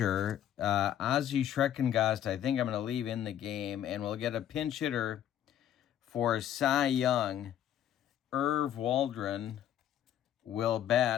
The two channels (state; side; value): quieter; right; 10.8 dB